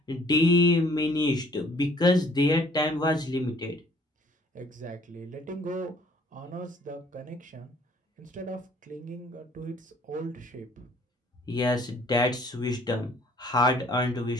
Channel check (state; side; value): normal; both; correlation 0.58